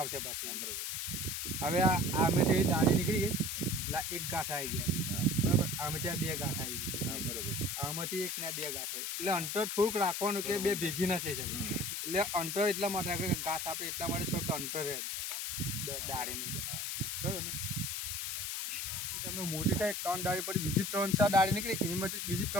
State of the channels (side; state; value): left; noise; hiss, 2 dB below the sound